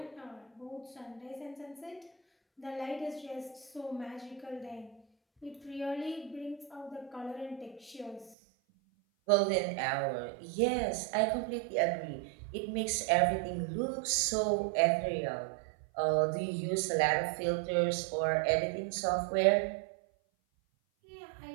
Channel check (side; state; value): left; drops out; at 8.3 s